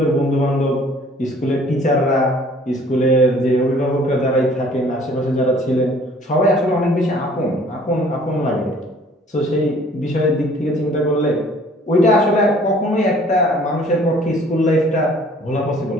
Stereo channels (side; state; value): both; normal; correlation 0.55